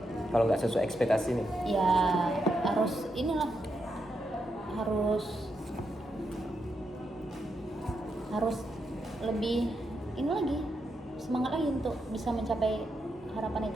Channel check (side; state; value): both; normal; correlation 0.83